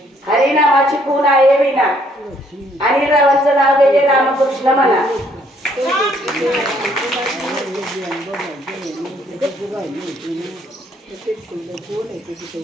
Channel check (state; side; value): normal; both; correlation 0.66